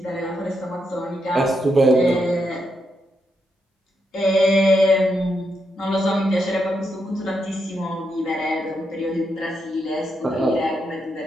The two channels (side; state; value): both; normal; correlation 0.82